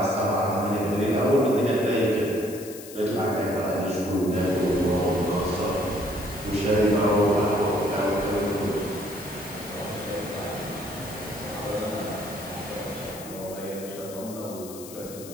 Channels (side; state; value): left; noise; hiss, 15 dB below the sound